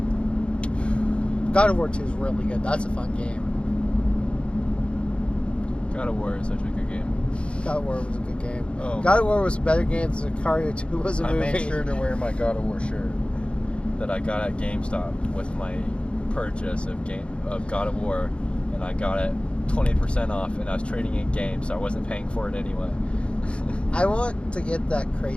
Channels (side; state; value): right; late; 0.058 ms